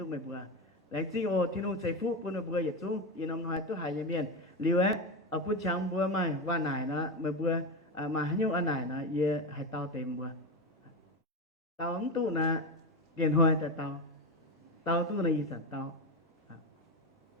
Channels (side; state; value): both; normal; correlation 0.17